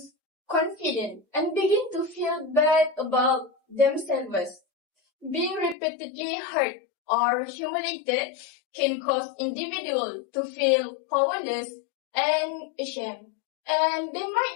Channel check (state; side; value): drops out; right; at 5.8 s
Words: confidence and begin to feel bad about themselves. Being repeatedly hurt or humiliated can cause individuals to feel powerless and ashamed, and they